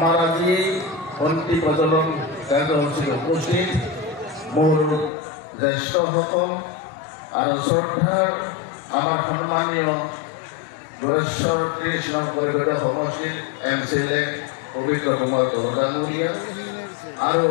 আজি বন্তি প্ৰজ্বলন কাৰ্যসূচীত উপস্থিত মোৰ জ্যেষ্ঠসকল আৰু শ্ৰদ্ধাৰ আমাৰ সন্মানীয় যোগেশ্বৰ কৃষ্ণ পৰিষদৰ সমষ্টিৰ MCLA পবিত্ৰ কুমাৰ ডাঙৰীয়া আৰু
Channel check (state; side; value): drops out; right; at 5.1 s